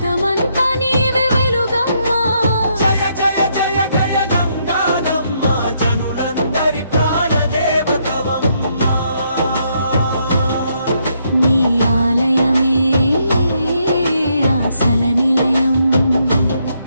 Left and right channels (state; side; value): inverted; both; correlation -0.75